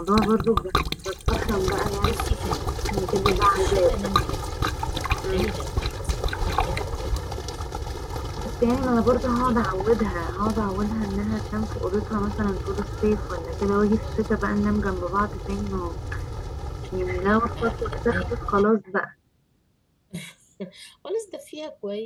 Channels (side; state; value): both; identical; correlation 1.00